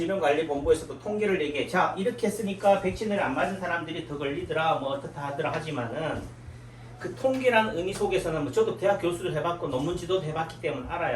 통계를 얘기해. 자 이렇게 했으니까 백신을 안 맞은 사람들이 더 걸리더라 뭐 어떻다 하더라 하지만은 그 통계라는 의미 속에서는 뭐 저도 대학 교수도 해봤고 논문 지도도 해봤기 때문에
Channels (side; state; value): both; identical; correlation 1.00